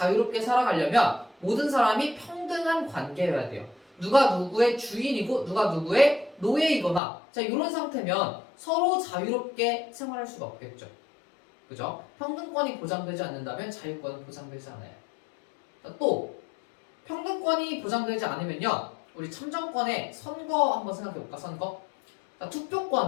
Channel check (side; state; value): right; drops out; at 7.0 s